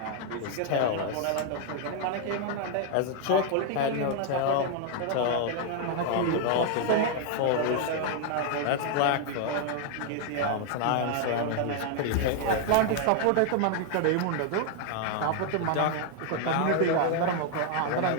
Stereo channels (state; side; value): different; both; correlation 0.00